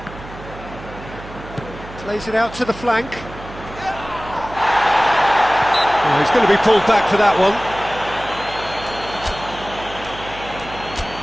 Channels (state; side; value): noise; right; hum, 15 dB below the sound